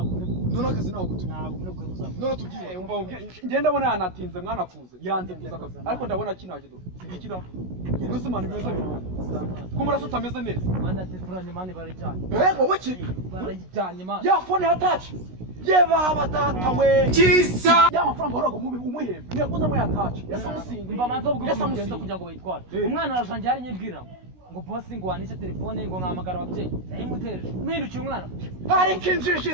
none akazi naho kutu. Ntabwo muri kuri muzaba. None tubyiye umva ngenda ndabona yanatinze mwana kuza. Yanze kuza akazi. Ariko ndabona kinaje do. Sigikira. Ubwo mana bimeze neza. Ko murasa utameze neza. Mana telefoni mani barijyanye. Wowe ki? Barijyanye mana. Ya phone ya touch. Baba data we. Kisa. Ya mafaranga horago umuhembe. Niyakuza mu ya touch. Yesa musinga. Mba manzo bwo kugenda kugira ngo bayitware. Umwana arajanje ari nyibwira. Ngo boss ngo wanishe telefone ngo nkamagara ababyeyi. Nayimutereje. Mpindukiye umwana. Hari kinjiji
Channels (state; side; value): late; left; 16 ms